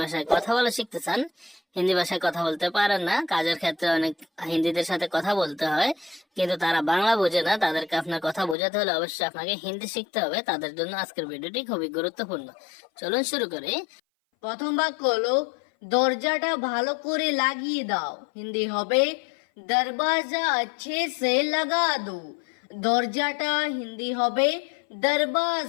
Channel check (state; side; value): drops out; right; at 8.6 s